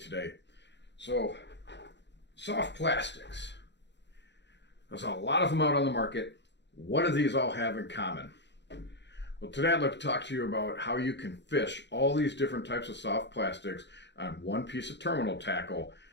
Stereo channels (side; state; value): right; late; 0.51 ms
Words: So, soft plastics. There's a lot of them out on the market. What do these all have in common? Well, today I'd like to talk to you about how you can fish all these different types of soft plastics on one piece of terminal tackle,